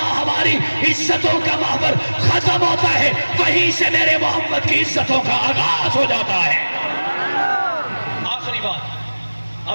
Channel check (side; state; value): both; inverted; correlation -1.00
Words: ہماری عزتوں کا محور ختم ہوتا ہے, وہیں سے میرے محمد کی عزتوں کا آغاز ہو جاتا ہے. آخری بات,